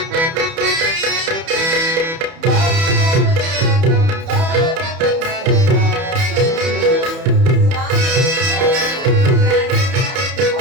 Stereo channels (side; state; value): left; late; 31 ms